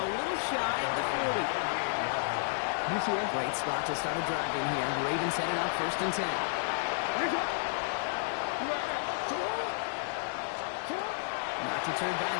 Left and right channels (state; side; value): silent; right; digital silence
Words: little shy of the 40. Great spot to start a drive in here. Ravens set it up 1st and 10. Not deterred by